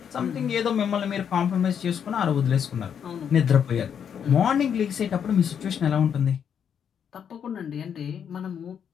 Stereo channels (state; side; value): quieter; right; 8.0 dB